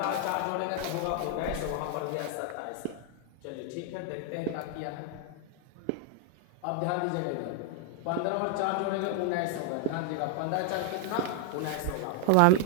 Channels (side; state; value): both; different; correlation 0.00